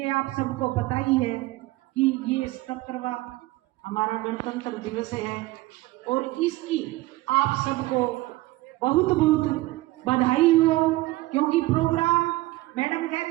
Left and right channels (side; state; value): left; quieter; 19.1 dB